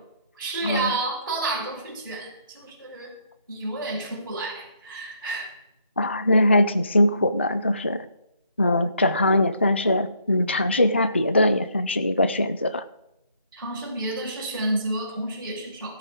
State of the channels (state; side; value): inverted; both; correlation -0.69